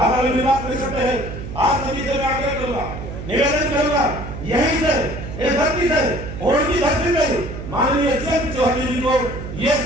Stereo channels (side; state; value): right; noise; hum, 9 dB below the sound